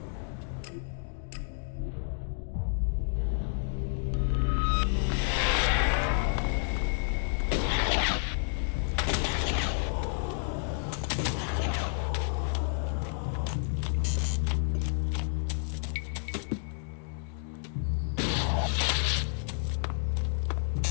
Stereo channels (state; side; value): silent; right; digital silence